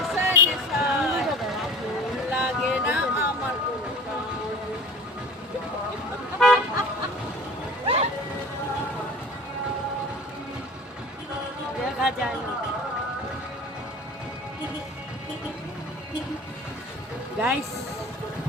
নেশায় লাগে না আমার কোনো দেখা যায় না গাইস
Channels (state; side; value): normal; both; correlation 0.40